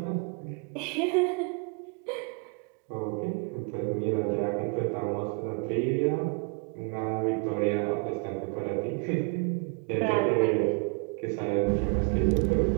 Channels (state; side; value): quieter; left; 34.2 dB